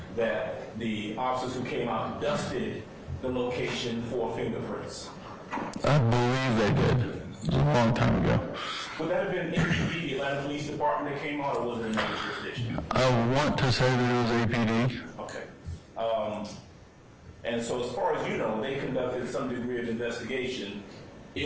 that the officers who came out dusted the location for fingerprints? I believe they did. It was a long time ago. Would that have been APD, the Atlanta Police Department that came out, or was it another jurisdiction? I want to say that it was APD. Okay. And so as far as you know, they conducted some degree of investigation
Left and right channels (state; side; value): identical; both; correlation 1.00